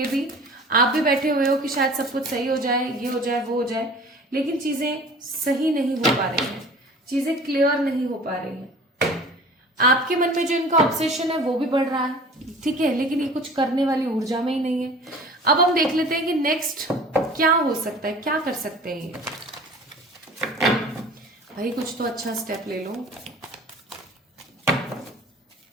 भी, आप भी बैठे हुए हो कि शायद सब कुछ सही हो जाए, ये हो जाए, वो हो जाए, लेकिन चीजें सही नहीं हो पा रही हैं, चीजें क्लियर नहीं हो पा रही हैं। आपके मन में जो इनका ऑब्सेशन है वो भी बढ़ रहा है, ठीक है, लेकिन ये कुछ करने वाली ऊर्जा में ही नहीं है। अब हम देख लेते हैं कि नेक्स्ट क्या हो सकता है, क्या कर सकते हैं ये। भाई कुछ तो अच्छा स्टेप ले लो।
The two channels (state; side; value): normal; both; correlation 0.44